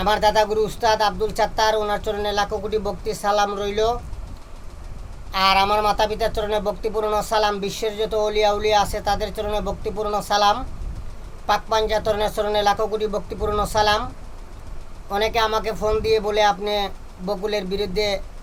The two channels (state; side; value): identical; both; correlation 1.00